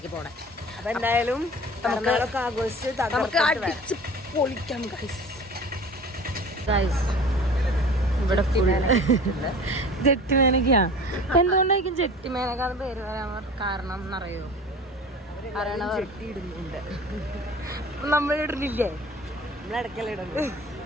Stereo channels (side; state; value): both; normal; correlation 0.41